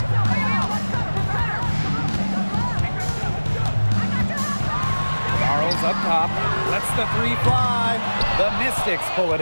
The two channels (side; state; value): both; inverted; correlation -1.00